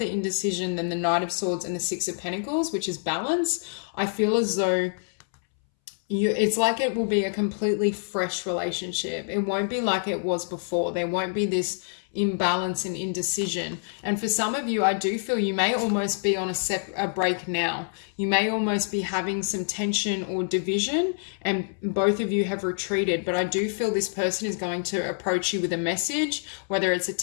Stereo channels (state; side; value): silent; right; 61 dB below the other